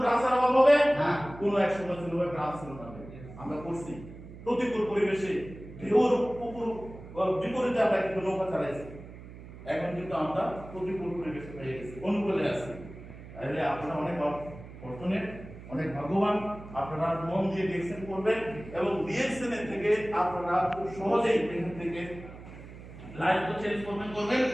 ব্রাঞ্চের অভাব হবে না। কোনো এক সময় ছিল ব্রাঞ্চ ছিল না, আমরা করছি প্রতিকূল পরিবেশে ঢেউর উপর বিপরীতে আমরা কিন্তু নৌকা চালাইছি। এখন কিন্তু আমরা প্রতিকূল পরিবেশে পেয়ে গেছি, অনুকূলে আছি। তাহলে আপনারা অনেক ফরচুনেট, অনেক ভাগ্যবান। আপনারা মন দিয়ে ডিএক্সএন করবেন এবং ডিএক্সএন এর থেকে আপনারা খুব সহজেই এখান থেকে লাইফ তো চেঞ্জ করবেন,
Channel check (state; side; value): noise; right; hum, 15 dB below the sound